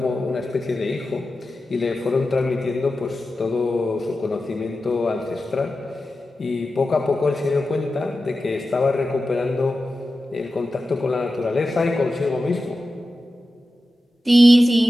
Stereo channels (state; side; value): normal; both; correlation 0.93